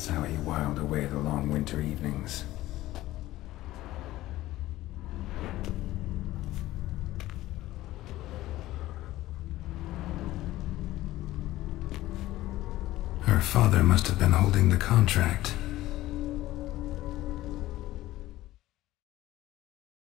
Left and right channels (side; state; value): right; quieter; 16.1 dB